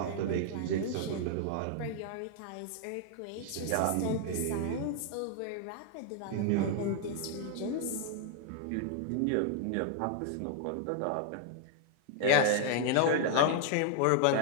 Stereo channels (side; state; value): both; different; correlation 0.00